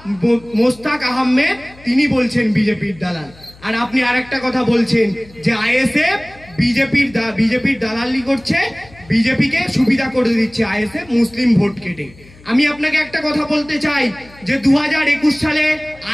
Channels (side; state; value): left; noise; hum, 24 dB below the sound